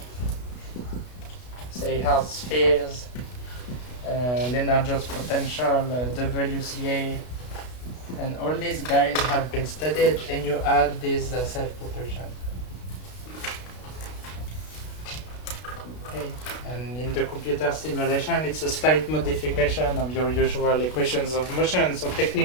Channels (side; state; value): right; late; 32 ms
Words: say hard spheres, Lennard-Jones potential, WCA, and all these guys have been studied, and you add this self-propulsion. Okay. And in the computer simulation, it's a slight modification of your usual equations of motion. So